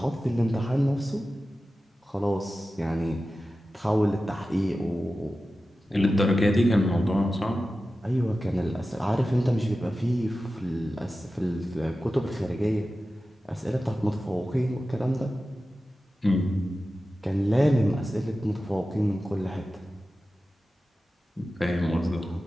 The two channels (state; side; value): normal; both; correlation 0.94